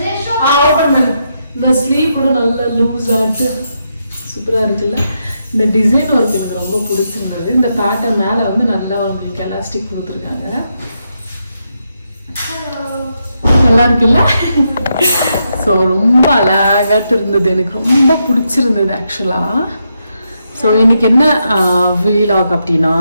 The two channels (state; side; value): inverted; both; correlation -0.82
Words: இந்த ஸ்லீவ் கூட நல்லா லூஸ் ஆகிட்டு சூப்பராக இருக்குல்ல. இந்த டிசைன் ஒர்க் எனக்கு ரொம்ப பிடிச்சிருந்தது. இந்த பேட்டர்ன் மேலே நல்லா உங்களுக்கு எலாஸ்டிக் கொடுத்துருக்காங்க, நல்லா இருக்குல்ல. ஸோ ரொம்ப அழகாட்டு இருந்தது, எனக்கு ரொம்ப பிடிச்சிருந்தது ஆக்சுவலாக. ஸோ இன்றைக்கி என்ன வீலாக் அப்படின்னா,